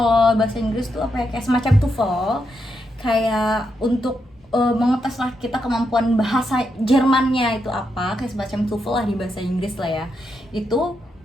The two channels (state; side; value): normal; both; correlation 0.83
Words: bahasa Inggris tuh apa ya, kayak semacam TOEFL, kayak untuk mengetes lah kita kemampuan bahasa Jermannya itu apa, kayak semacam TOEFL lah di bahasa Inggris lah ya. Itu